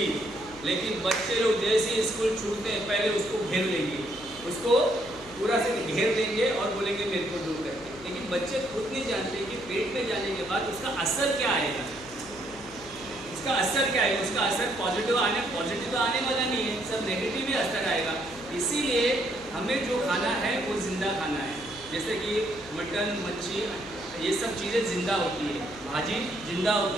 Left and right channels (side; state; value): left; noise; hum, 20 dB below the sound